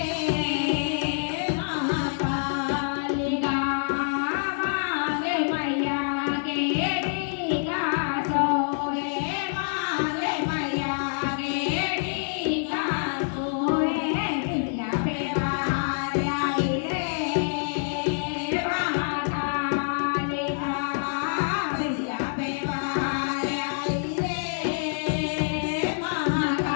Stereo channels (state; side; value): silent; right; digital silence